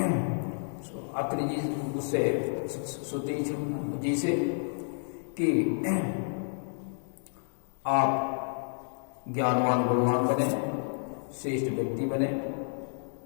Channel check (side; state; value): right; silent; 55 dB below the other